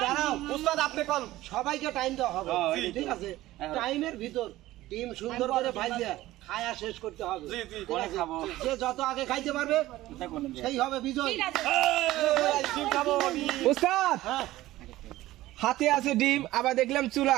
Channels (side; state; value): left; quieter; 16.3 dB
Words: দাঁড়াও উস্তাদ, আপনি কোন সবাইকে টাইম দেওয়া হবে, ঠিক আছে? টাইমের ভিতর ডিম সুন্দর করে ভাইজা খায়া শেষ করতে হবে। পরে খাবো। যে যত আগে খাইতে পারবে সেই হবে বিজয়। ডিম খাবো আমি। উস্তাদ হ্যাঁ, হাতে আছে ডিম, আবার দেখলাম চুলা,